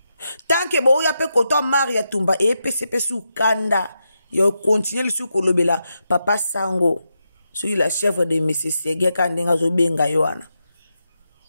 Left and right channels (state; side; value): inverted; both; correlation -0.85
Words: tant que boya pe koto Maria Tumba pesa su kanda ya continuer lisu kolobela Papa Sango sur la chef de Monsieur Sege kandenga zo benga yoana